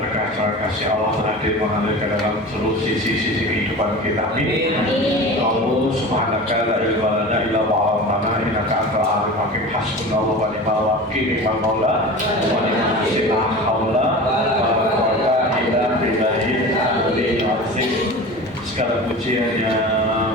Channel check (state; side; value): normal; both; correlation 0.34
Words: kasih Allah hadir mengalir ke dalam seluruh sisi-sisi kehidupan kita. Amin. Allah subhanaka la ilma lana illa ma 'allamtana innaka antal alimul hakim. Hasbunallahu wa ni'mal wakil, ni'mal maula wa ni'mal nasir. La haula wa la quwwata illa billahil aliyyil azim. Segala puji hanya